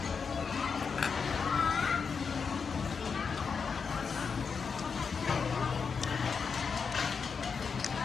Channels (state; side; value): quieter; right; 5.7 dB